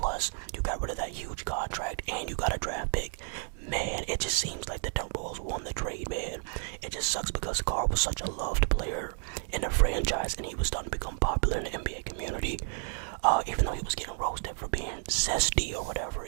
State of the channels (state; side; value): silent; left; 57 dB below the other